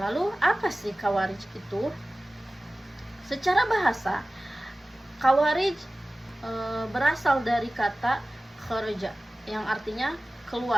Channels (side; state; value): both; normal; correlation 0.97